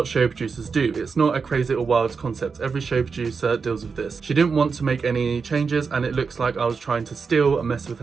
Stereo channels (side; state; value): left; quieter; 5.2 dB